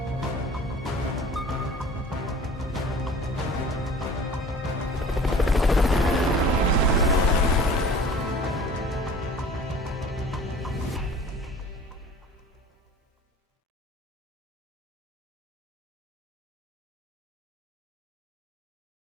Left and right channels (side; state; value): both; normal; correlation 0.45